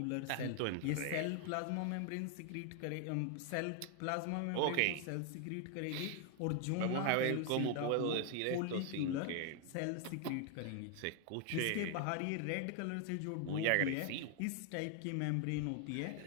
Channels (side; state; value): both; different; correlation 0.00